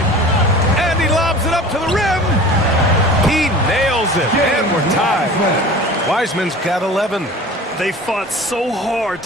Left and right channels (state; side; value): normal; both; correlation 0.40